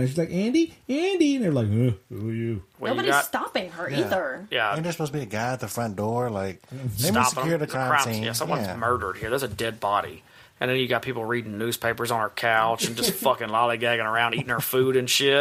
She's like, Andy? Andy? And they're like, who are you? Nobody's stopping her either. Yeah. Ain't there supposed to be a guy at the front door? Like, they must secure the crime scene. Yeah, someone's murdered here. There's a dead body. And then you got people reading newspapers on her couch and just fucking lollygagging around, eating her food and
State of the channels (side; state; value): both; identical; correlation 1.00